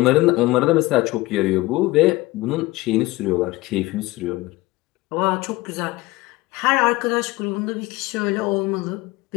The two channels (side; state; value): right; quieter; 20.0 dB